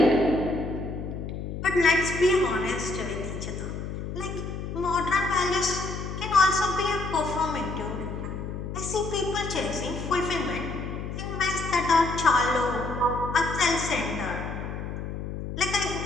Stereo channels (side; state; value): left; noise; hum, 6 dB below the sound